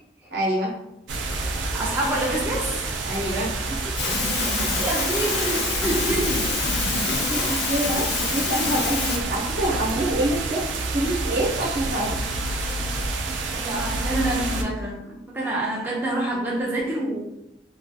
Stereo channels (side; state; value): both; normal; correlation 0.43